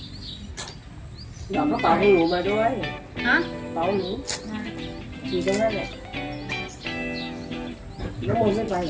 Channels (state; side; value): identical; both; correlation 1.00